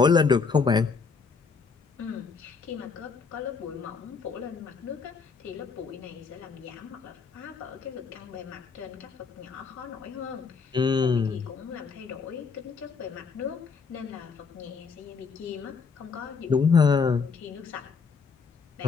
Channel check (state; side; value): quieter; right; 5.2 dB